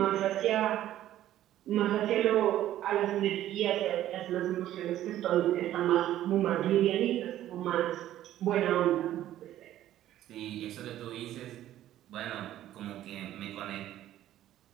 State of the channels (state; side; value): quieter; left; 12.9 dB